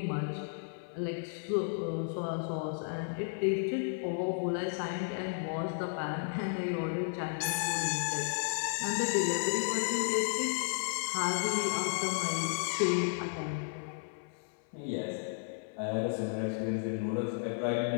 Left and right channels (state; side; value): silent; right; 55 dB below the other